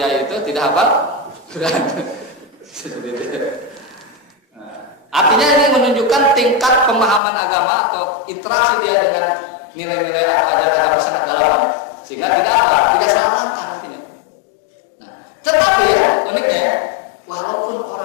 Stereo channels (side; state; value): right; drops out; at 7.2 s